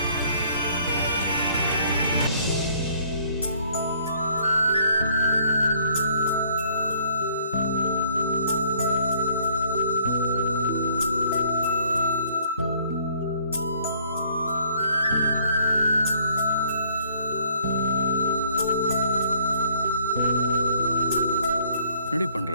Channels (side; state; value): both; inverted; correlation -0.61